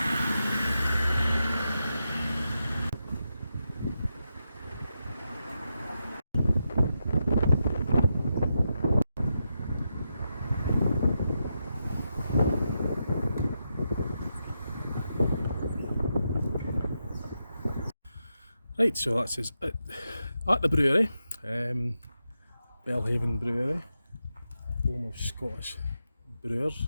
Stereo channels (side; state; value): both; inverted; correlation -0.86